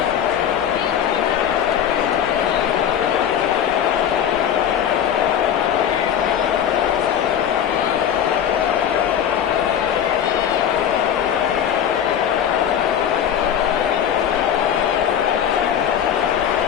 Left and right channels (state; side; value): quieter; right; 9.2 dB